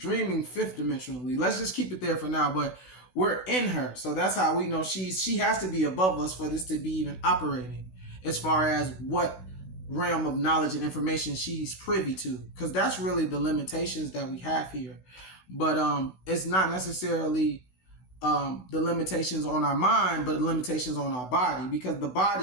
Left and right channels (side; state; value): right; late; 16 ms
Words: fifth dimensionally. Let's just keep it there for now, but we're in her. So that's how we know she has to be above us for this to be even operating as far as what realm of knowledge and information she's privy to, because that's really the limitations that we have here. But it's not necessarily the limitations on our mind, but the limitations on our body, because the